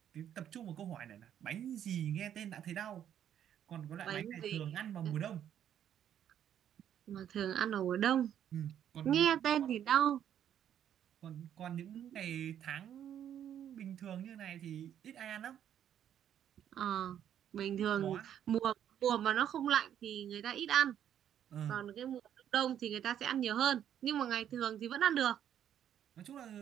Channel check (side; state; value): left; quieter; 10.0 dB